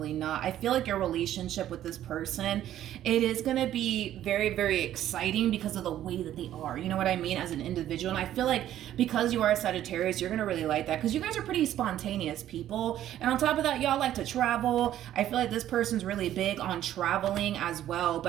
not. I feel like your relationship with this person, it is going to be very, very exciting because of the way that they are. You know what I mean? As an individual. And I feel like because you are a Sagittarius, you're going to really like that, because you guys are pretty spontaneous people. And on top of that, y'all like to travel. I feel like this person's really big on traveling as well.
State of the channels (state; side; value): quieter; left; 12.1 dB